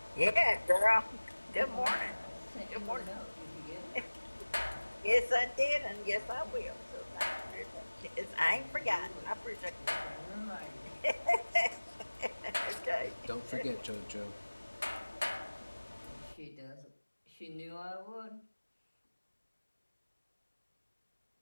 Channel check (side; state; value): both; inverted; correlation -1.00